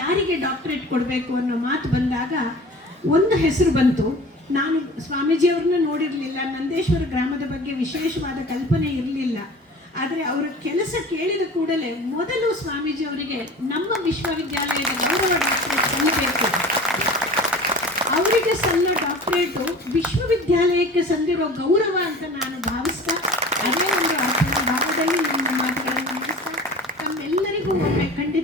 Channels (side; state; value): both; normal; correlation 0.41